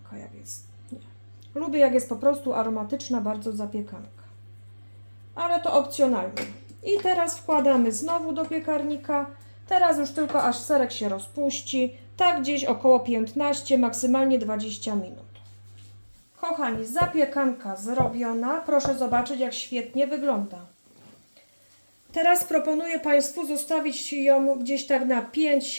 jak jest. Nie. Lubię, jak jest po prostu aromatyczna bardzo zapiekanka. Ale to opcjonalnie. I teraz wkładamy znowu do piekarnika. Teraz już tylko aż serek się rozpuści. Tak gdzieś około 15, maksymalnie 20 minut. Kochani, zapiekanka zrobiona. Proszę zobaczyć, jak świetnie wygląda. Teraz proponuję Państwu zostawić ją gdzieś tak na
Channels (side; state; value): both; inverted; correlation -1.00